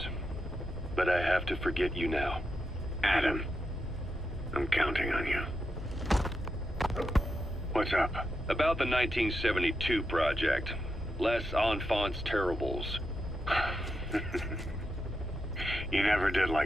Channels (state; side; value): normal; both; correlation 0.85